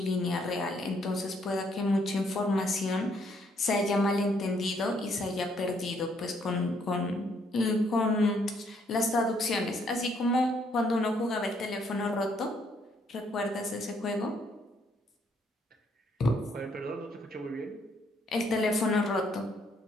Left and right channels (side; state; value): both; normal; correlation 0.69